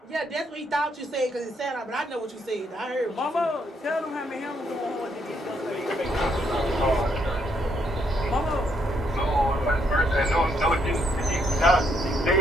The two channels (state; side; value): normal; both; correlation 0.73